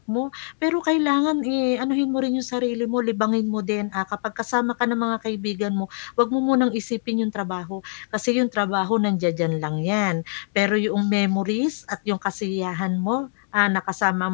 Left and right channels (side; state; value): right; silent; digital silence